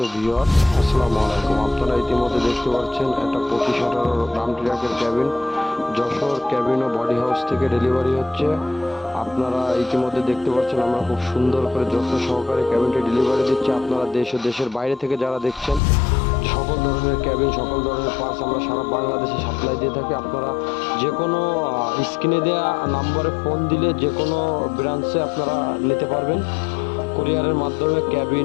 ভিউয়ার্স, আসসালামু আলাইকুম। আপনারা ইতিমধ্যে দেখতে পাচ্ছেন একটা 25-18 রাম ট্রাকের ক্যাবিন যশোর ক্যাবিন ও বডি হাউস থেকে ডেলিভারি হচ্ছে। আপনারা ইতিমধ্যে দেখতে পাচ্ছেন আমরা খুব সুন্দর করে যত্ন সহকারে ক্যাবিনটি ডেলিভারি দিচ্ছি। আপনারা দেশ ও দেশের বাইরে থেকে যারা দেখছেন, সকল ধরনের ক্যাবিন, সকল ধরনের পার্টস আমরা সারা বাংলাদেশে সাপ্লাই দিয়ে থাকি। আপনারা যে কোনো স্ক্রিনে দেওয়া নাম্বারে ফোন দিলে যে কোনো ব্রাঞ্চে আপনারা নিতে পারবেন। কুরিয়ারের মাধ্যমে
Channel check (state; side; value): drops out; right; at 15.8 s